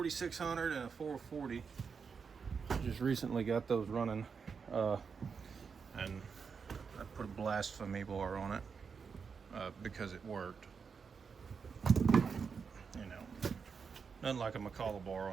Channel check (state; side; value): quieter; left; 5.8 dB